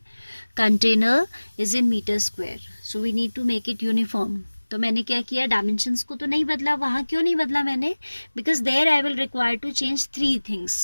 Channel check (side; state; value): both; inverted; correlation -1.00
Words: container is in metre square. So we need to make it uniform. तो मैंने क्या किया, dimensions को तो नहीं बदला. वहाँ क्यों नहीं बदला मैंने? Because there I will require to change 3